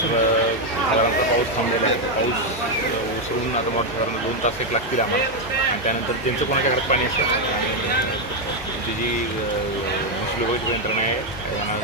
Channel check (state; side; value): normal; both; correlation 0.04